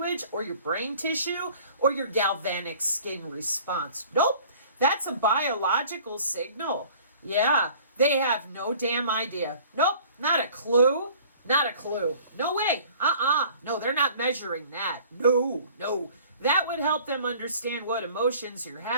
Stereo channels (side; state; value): both; inverted; correlation -0.50